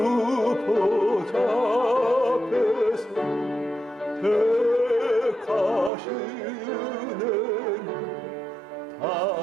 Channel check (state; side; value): drops out; left; at 5.9 s